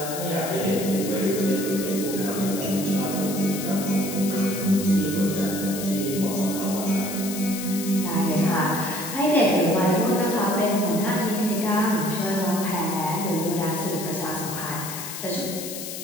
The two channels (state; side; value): noise; left; hiss, 8 dB below the sound